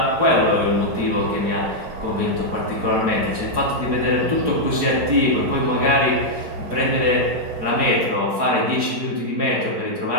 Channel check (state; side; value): late; left; 4.8 ms